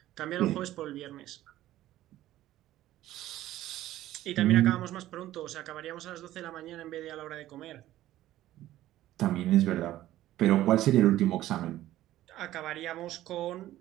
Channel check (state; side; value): quieter; left; 14.4 dB